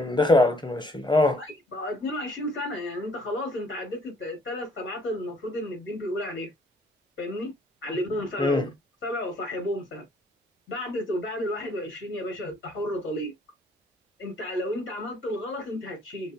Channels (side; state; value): both; normal; correlation 0.62